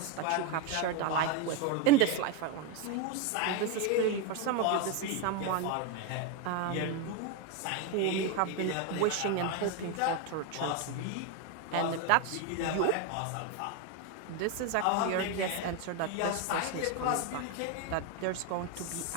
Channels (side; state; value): both; different; correlation 0.02